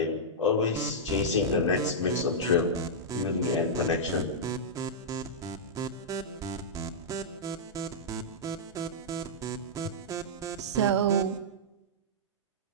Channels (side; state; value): both; normal; correlation -0.10